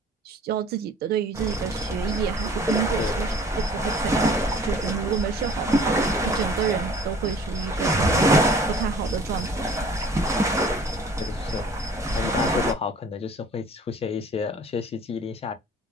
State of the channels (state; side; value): normal; both; correlation 0.51